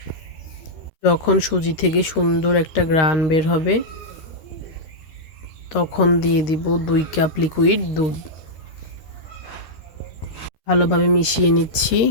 যখন সুজি থেকে সুন্দর একটা ঘ্রাণ বের হবে তখন দিয়ে দিব 2 কাপ লিকুইড দুধ। ভালোভাবে মিশিয়ে নিচ্ছি।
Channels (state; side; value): late; right; 13 ms